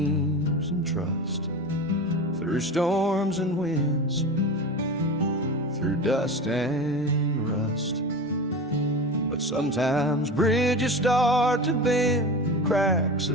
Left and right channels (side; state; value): both; normal; correlation 0.28